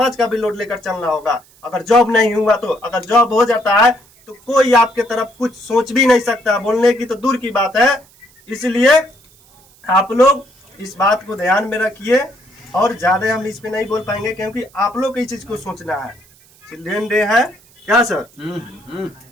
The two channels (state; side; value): noise; right; hiss, 29 dB below the sound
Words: का भी लोड लेकर चलना होगा। अगर जॉब नहीं हुआ तो, अगर जॉब हो जाता है तो कोई आपके तरफ कुछ सोच भी नहीं सकता, बोलने की तो दूर की बात है। इसलिए आप लोग इस बात को ध्यान में रखिए, और ज्यादा हम इस पे नहीं बोल पाएंगे क्योंकि आप लोग इस चीज को सोचना है। चिल्ड्रन डे है क्या सर?